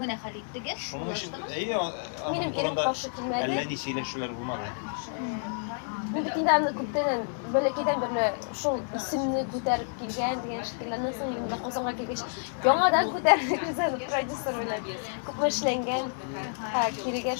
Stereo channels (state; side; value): silent; right; digital silence